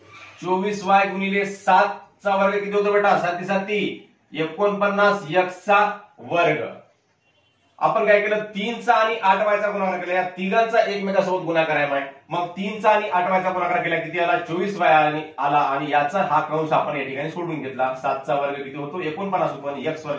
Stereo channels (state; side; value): identical; both; correlation 1.00